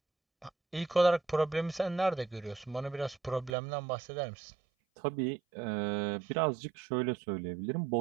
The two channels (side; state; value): left; drops out; at 3.6 s